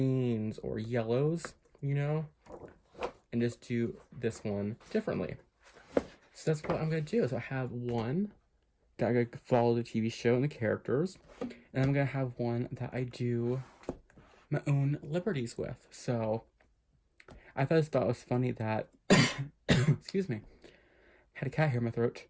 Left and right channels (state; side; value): identical; both; correlation 1.00